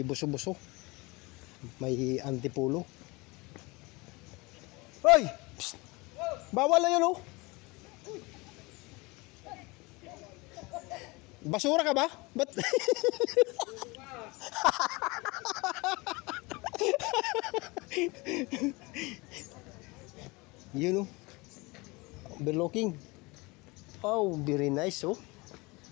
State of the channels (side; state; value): right; quieter; 24.7 dB